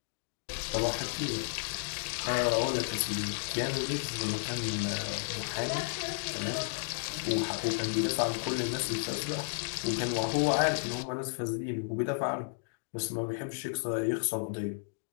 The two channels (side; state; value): right; silent; digital silence